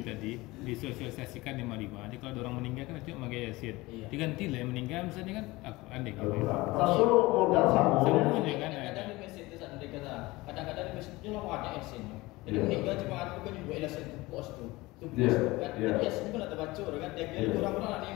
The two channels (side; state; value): right; quieter; 20.9 dB